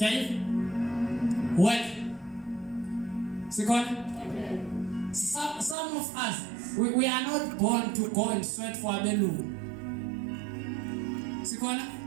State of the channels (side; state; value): left; drops out; at 5.8 s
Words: it. Work. Second. Some of us, we are not born to go and sweat for a bellu. Second.